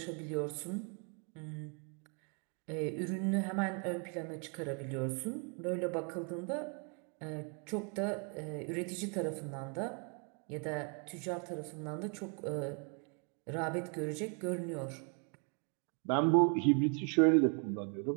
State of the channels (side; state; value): left; quieter; 38.4 dB